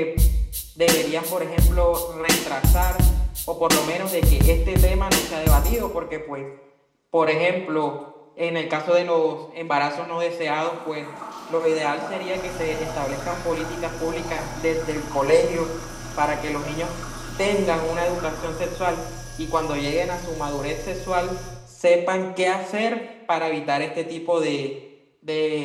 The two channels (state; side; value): identical; both; correlation 1.00